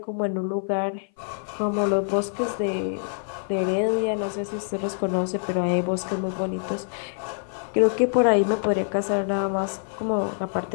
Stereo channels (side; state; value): right; silent; 57 dB below the other